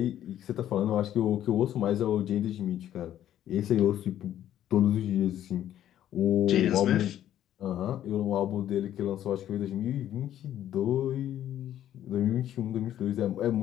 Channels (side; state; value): right; quieter; 11.6 dB